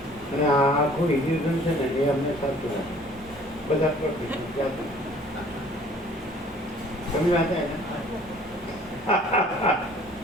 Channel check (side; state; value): both; normal; correlation 0.54